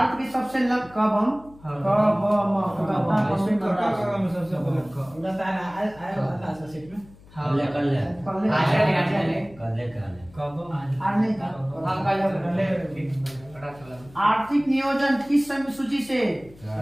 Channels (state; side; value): noise; left; hum, 23 dB below the sound